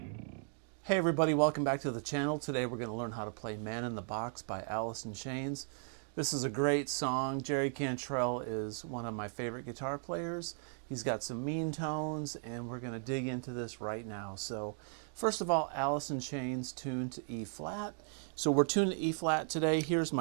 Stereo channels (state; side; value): silent; left; 53 dB below the other